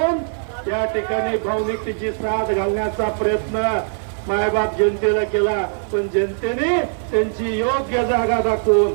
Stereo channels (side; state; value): left; silent; 57 dB below the other